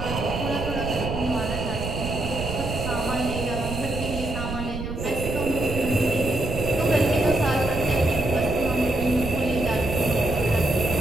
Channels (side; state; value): right; noise; rumble, 6 dB below the sound